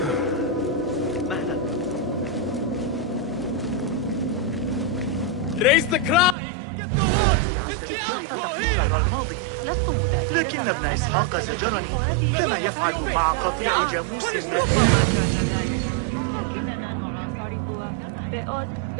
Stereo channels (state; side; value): drops out; left; at 6.4 s